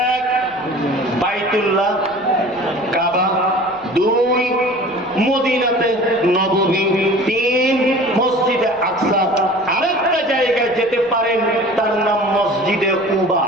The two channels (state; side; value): noise; right; rumble, 27 dB below the sound